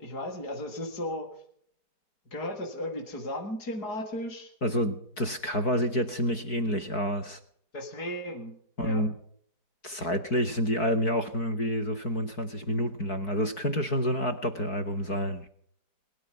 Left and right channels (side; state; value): right; late; 4.6 ms